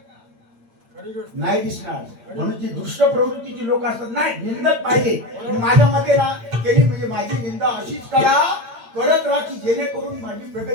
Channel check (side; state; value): left; late; 8.8 ms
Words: नाही दिसणार. म्हणून जी दुष्ट प्रवृत्तीची लोक असतात, नाही निंदक पाहिजे. माझ्या मते ना, त्यांनी म्हणजे माझी निंदा अशीच करा, करत राहा की जेणेकरून माझी